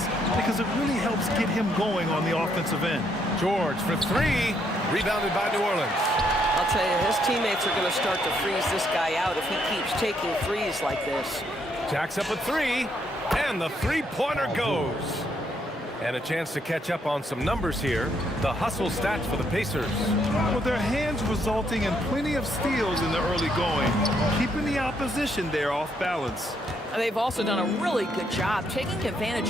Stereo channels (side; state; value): both; normal; correlation 0.73